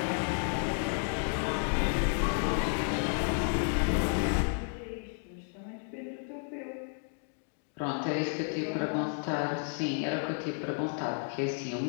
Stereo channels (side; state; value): right; silent; 56 dB below the other